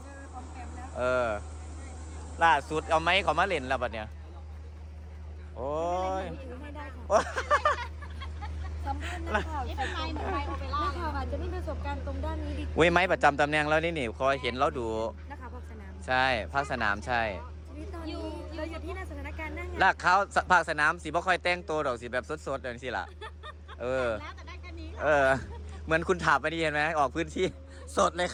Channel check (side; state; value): both; identical; correlation 1.00